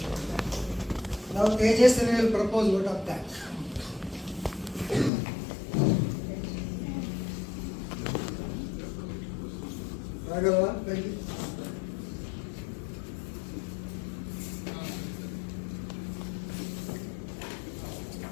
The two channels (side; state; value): right; drops out; at 5.1 s